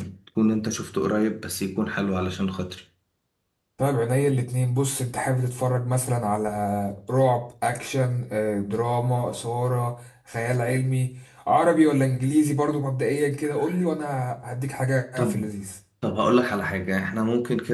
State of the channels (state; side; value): identical; both; correlation 1.00